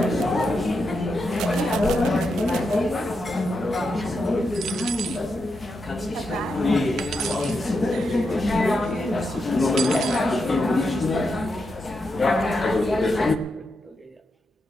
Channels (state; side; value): normal; both; correlation 0.85